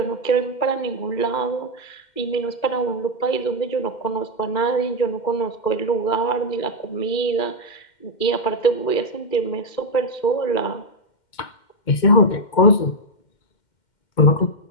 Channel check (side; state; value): right; late; 2.1 ms